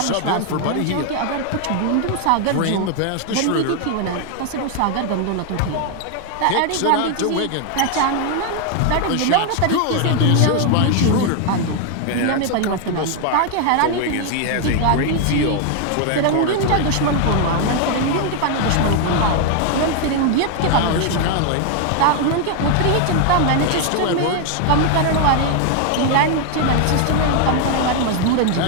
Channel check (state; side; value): different; both; correlation 0.00